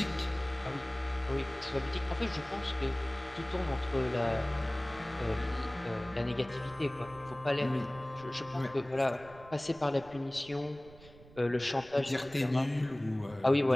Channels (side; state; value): right; noise; rumble, 21 dB below the sound